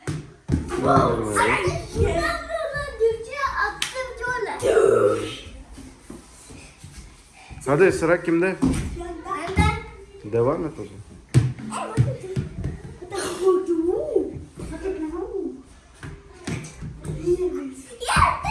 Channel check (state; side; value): identical; both; correlation 1.00